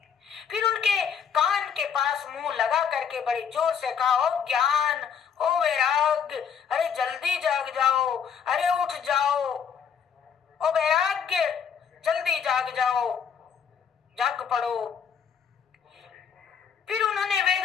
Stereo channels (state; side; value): quieter; right; 7.2 dB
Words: फिर उनके कान के पास मुंह लगा करके बड़े जोर से कहा ओ ज्ञान ओ वैराग्य, अरे जल्दी जाग जाओ, अरे उठ जाओ, ओ वैराग्य जल्दी जाग जाओ, जाग पड़ो। फिर उन्होंने